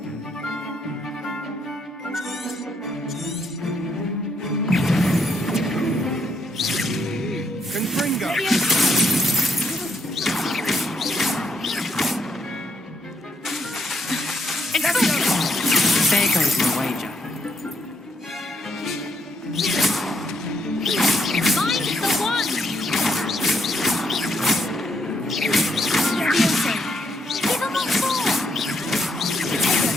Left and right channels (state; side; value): normal; both; correlation 0.75